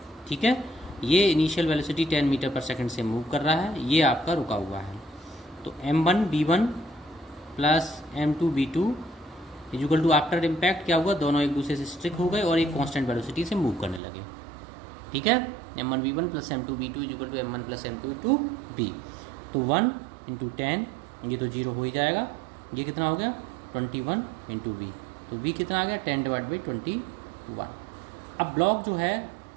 ठीक है, ये इनिशियल वेलोसिटी 10 मीटर पर सेकंड से मूव कर रहा है, ये आपका रुका हुआ है। तो m1v1 plus m2v2 equal to after impact क्या हुआ, दोनों एक दूसरे से स्ट्रिक हो गए और एक कांस्टेंट वेलोसिटी से मूव करने लगे। ठीक है, m1v1 plus m2v2 equal to m1 plus m2v2। तो 1 इंटू 10, ये तो 0 हो ही जाएगा। ये कितना हो गया 21 इंटू v, तो v कितना आ गया 10/21। अब ब्लॉक जो है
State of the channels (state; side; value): drops out; left; at 14.0 s